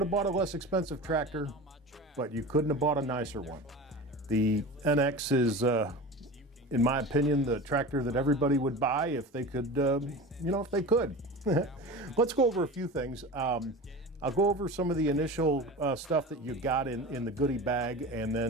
have bought a less expensive tractor, but you couldn't have bought a nicer one. The NX is, in my opinion, the tractor that everybody would buy if they could, if they could. Let's go over a few things. I'll go over some of the initial stuff that you got in the goodie bag, and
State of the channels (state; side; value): normal; both; correlation 0.32